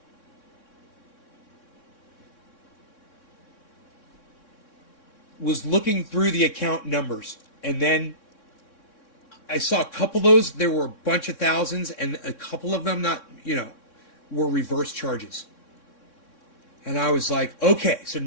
was looking through the account numbers, and then I saw a couple of those. There were a bunch of thousands, and a couple of them not, you know, were reverse charges. And I was like, okay, so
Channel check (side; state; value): right; late; 3.6 ms